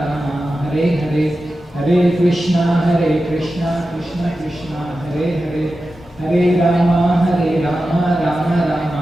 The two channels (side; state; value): both; normal; correlation 0.92